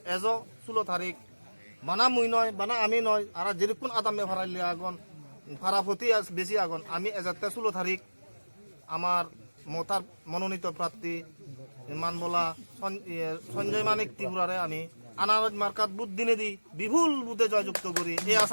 এজ 16 তারিখ বানা মুই নয় বানা আমি নয় আর যেরকম আদামে ভাড়াইলে আগন ভাড়া প্রতি বেশি আগন আমি এজাতে 16 তারিখ আমার মতার মনোনীত প্রার্থী মানবলা সঞ্জয় মানিক ত্রিপুরারে আমি আনারজ মার্কাত বুধ দিনে দি বিপুল বুধে জয়যুক্ত করি এই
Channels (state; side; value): inverted; both; correlation -1.00